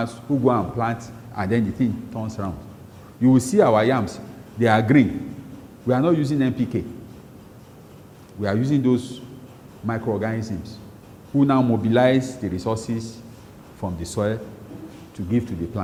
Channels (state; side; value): identical; both; correlation 1.00